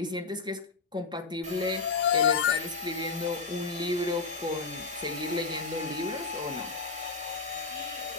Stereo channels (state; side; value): quieter; right; 4.5 dB